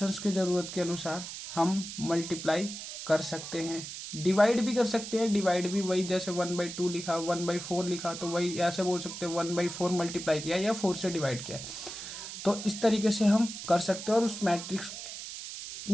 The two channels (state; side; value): noise; right; hiss, 9 dB below the sound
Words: के ज़रूरत के अनुसार हम मल्टीप्लाई कर सकते हैं, डिवाइड भी कर सकते हैं। डिवाइड भी वही, जैसे 1/2 लिखा, 1/4 लिखा, तो वही ऐसे बोल सकते हैं 1/4 मल्टीप्लाई किया या 4 से डिवाइड किया। तो इस तरीके से हम कर सकते हैं, और उस मैट्रिक्स